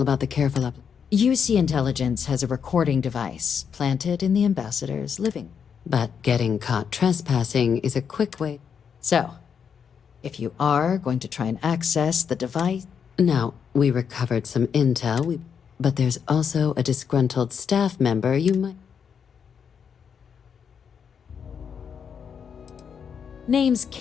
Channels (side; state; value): right; quieter; 7.1 dB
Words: about the careful UC Intelligence has a recording device planted in the ambassador's living. But getting caught trespassing is a quick way. So, if you are going to try and access the device... Now, we recovered some intel, but there's also a disgruntled staff member you might... Name's